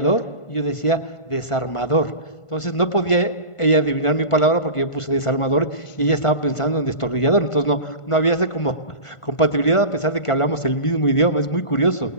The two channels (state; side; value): late; right; 1.5 ms